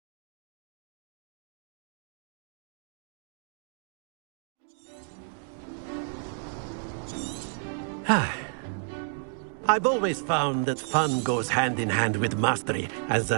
I've always found that fun goes hand in hand with mastery, as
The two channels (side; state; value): left; silent; digital silence